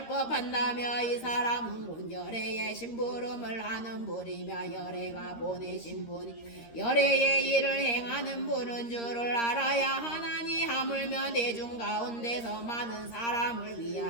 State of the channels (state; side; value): late; right; 13 ms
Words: 이 사람은 곧 열애의 심부름을 하는 분이며 열애가 보내신 분이 열애의 일을 행하는 분은 줄을 알아야 하나니 하물며 대중 가운데서 많은 사람을